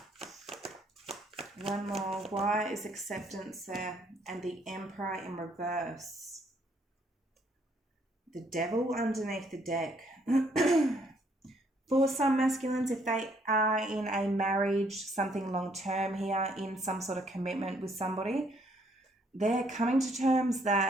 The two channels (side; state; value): both; normal; correlation 0.68